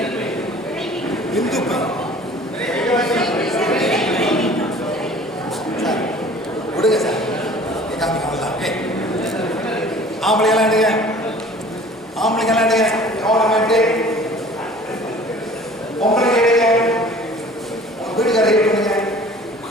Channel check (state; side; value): normal; both; correlation 0.48